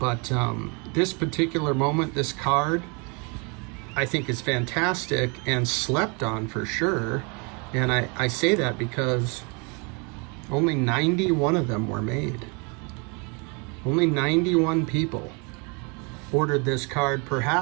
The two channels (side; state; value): left; quieter; 32.1 dB